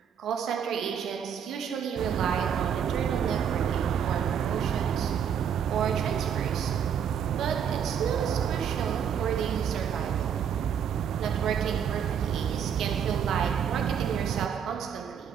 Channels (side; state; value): left; quieter; 8.1 dB